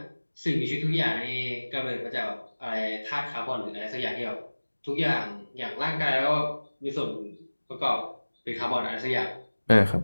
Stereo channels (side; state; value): both; inverted; correlation -1.00